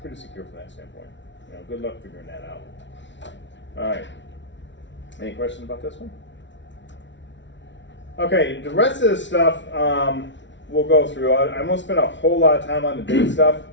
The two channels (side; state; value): right; late; 0.54 ms